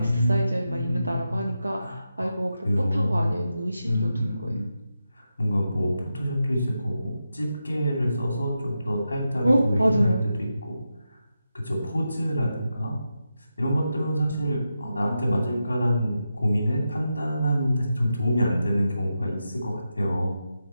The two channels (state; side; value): inverted; both; correlation -0.88